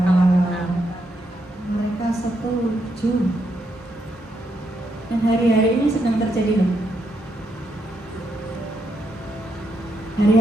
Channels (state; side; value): normal; both; correlation 0.79